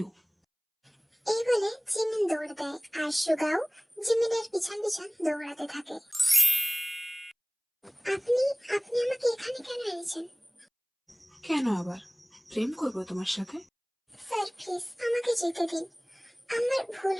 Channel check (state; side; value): identical; both; correlation 1.00